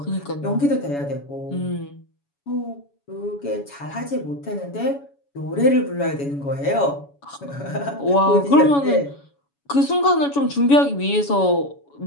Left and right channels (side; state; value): right; late; 7.1 ms